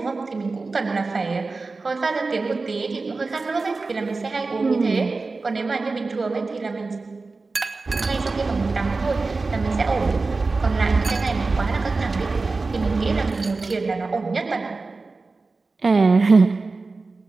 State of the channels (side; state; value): left; quieter; 3.8 dB